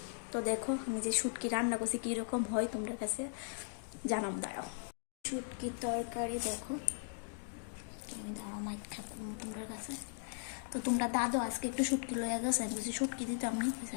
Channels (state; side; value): silent; right; digital silence